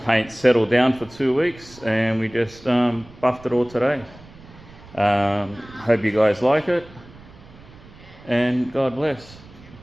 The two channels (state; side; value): noise; right; rumble, 21 dB below the sound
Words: settle down for 2 weeks, and we just buffed it all today. Hope you guys like it, and God bless.